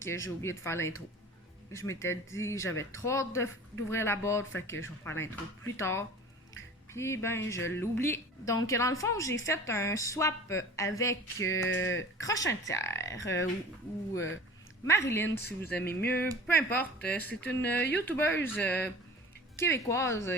j'ai oublié de faire l'intro. Je m'étais dit j'avais trop hâte d'ouvrir la boîte, fait que je vais faire l'intro plus tard. Puis ben, je l'oublie. Donc, dans le fond, j'ai fait un swap avec Crochintière ou Marilyn, si vous aimez mieux. Peu importe, c'est une youtubeuse québécoise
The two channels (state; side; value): normal; both; correlation 0.41